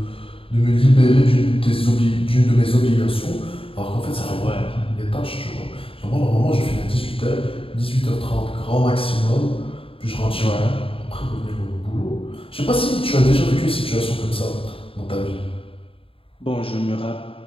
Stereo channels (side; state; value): right; late; 0.27 ms